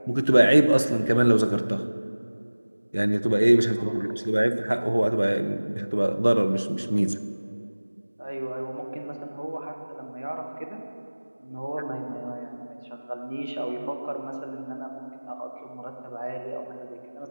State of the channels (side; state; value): both; inverted; correlation -1.00